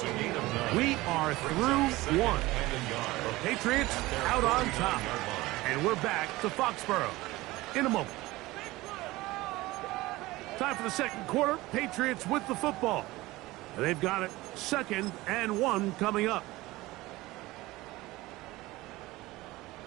a gain of 9. We are through one. The Patriots out on top. And we're back to Foxborough in a moment. Time for the second quarter. Patriots with the football. They've got it 2nd and 1 coming up.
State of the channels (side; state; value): left; quieter; 19.4 dB